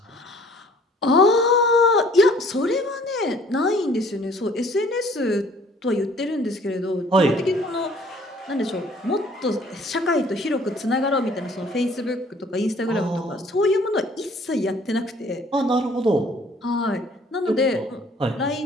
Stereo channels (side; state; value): both; normal; correlation 0.56